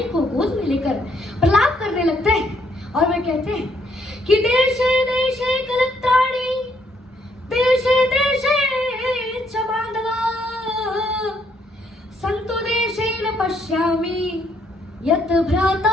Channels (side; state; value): both; normal; correlation 0.71